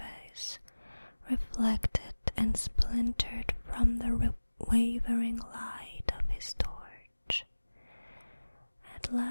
reflected and splintered from the wavering light of his torch. At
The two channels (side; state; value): both; inverted; correlation -1.00